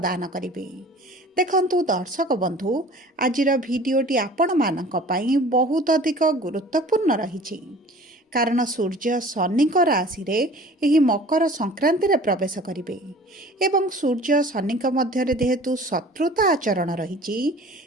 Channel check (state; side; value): normal; both; correlation 0.46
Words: करिवे। देखंतु दर्शक बंधु आज भिडियोटी आपण मानक पई बहुत अधिक गुरुत्वपूर्ण रही कारण सूर्य शनि राशि रे एही मकर संक्रांति रे प्रवेश करिवे एवं सूर्य शनि मध्य जेहेतु शत्रुता आचरण रही